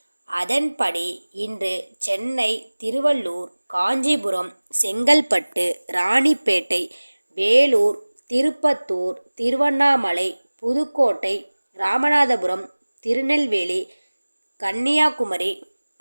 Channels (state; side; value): inverted; both; correlation -1.00